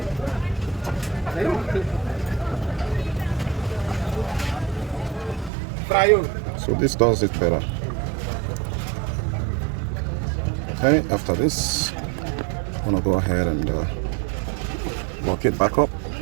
So this does it better. Okay, after this, I'm gonna go ahead and lock it back up.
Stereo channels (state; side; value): drops out; left; at 5.5 s